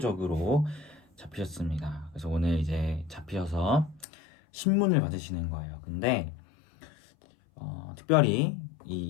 잡히셨습니다. 그래서 오늘 이제 잡히셔서 신문을 받으시는 거예요. 근데 특별히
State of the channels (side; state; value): right; drops out; at 4.0 s